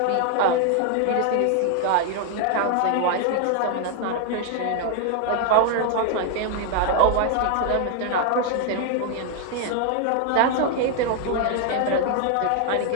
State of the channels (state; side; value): different; both; correlation 0.00